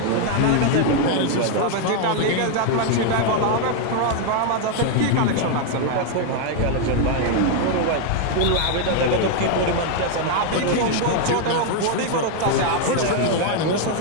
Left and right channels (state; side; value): different; both; correlation 0.00